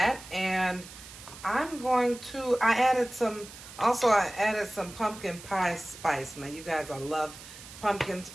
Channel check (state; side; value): noise; right; hiss, 16 dB below the sound